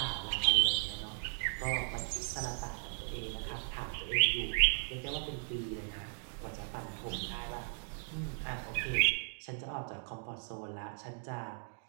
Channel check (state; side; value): silent; left; digital silence